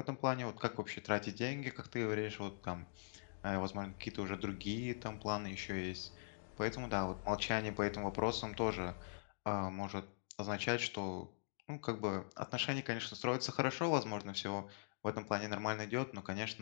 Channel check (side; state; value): right; silent; digital silence